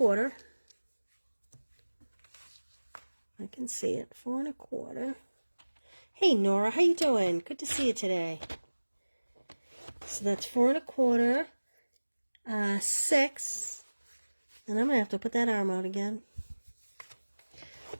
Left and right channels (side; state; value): both; inverted; correlation -1.00